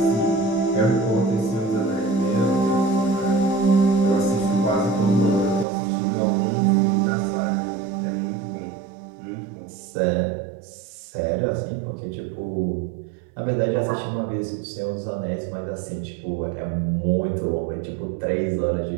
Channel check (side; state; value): left; drops out; at 5.7 s